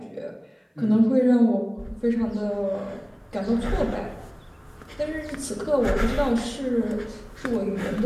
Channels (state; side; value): identical; both; correlation 1.00